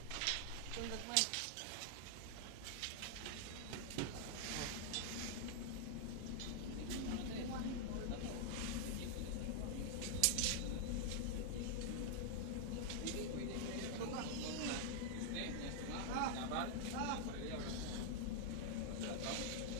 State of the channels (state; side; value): different; both; correlation -0.01